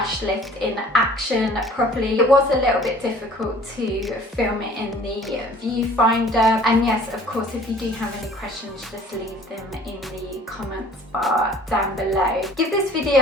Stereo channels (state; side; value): normal; both; correlation 0.51